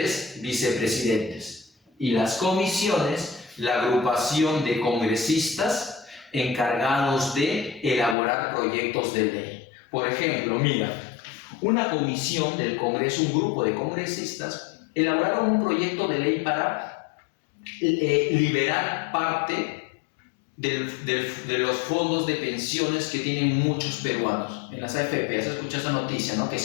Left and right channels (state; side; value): drops out; right; at 8.2 s